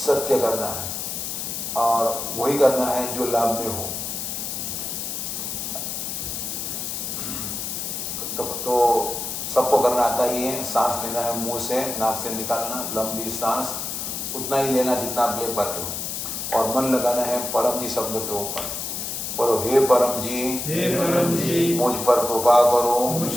करना है और वही करना है जो लाभ में हो। तो सबको करना आता ही है। सांस लेना है मुंह से, नाक से निकालना, लंबी सांस उतना ही लेना जितना आप ले पाते हो और मन लगाना है परम जी शब्द के ऊपर। बोलो हे परम जी, मुझ पर कृपा करो,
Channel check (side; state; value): left; noise; hiss, 4 dB below the sound